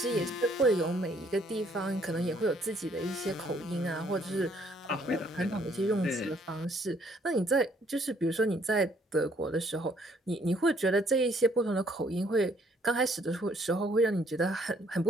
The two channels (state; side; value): normal; both; correlation 0.64